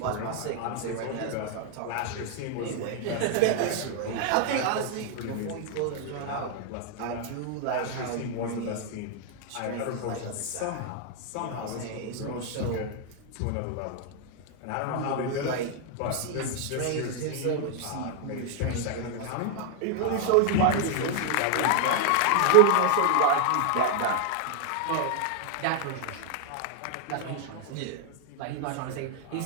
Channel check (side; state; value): both; different; correlation 0.00